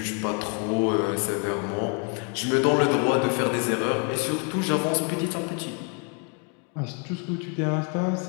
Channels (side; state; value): right; quieter; 36.4 dB